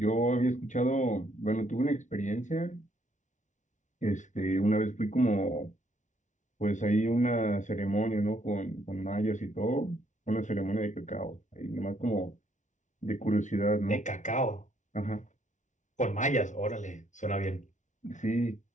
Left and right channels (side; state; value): right; late; 0.36 ms